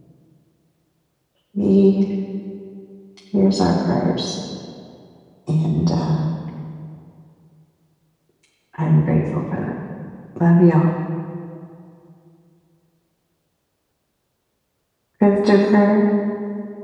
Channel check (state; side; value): identical; both; correlation 1.00